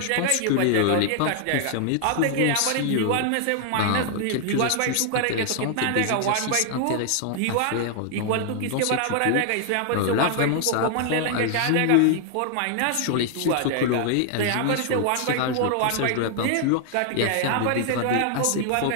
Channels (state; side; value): different; both; correlation 0.00